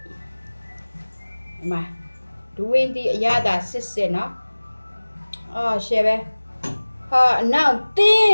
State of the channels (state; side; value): inverted; both; correlation -1.00